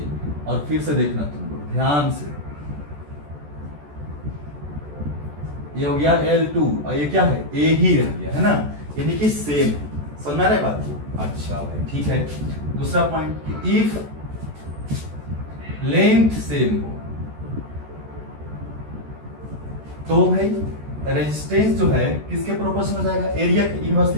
और फिर से देखना तुम लोग ध्यान से, ये हो गया L2 और ये क्या है, A ही रह गया, है ना, यानी कि सेम है। समझ में आ रहा है बात को। अच्छा भाई, ठीक है। दूसरा पॉइंट, इफ लेंथ सेम हो तो भाई रेजिस्टेंस जो है किसके प्रोपोर्शनल हो जाएगा, एरिया के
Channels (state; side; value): late; left; 14 ms